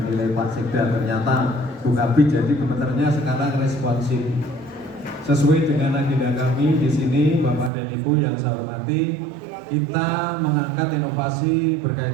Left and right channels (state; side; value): drops out; left; at 7.7 s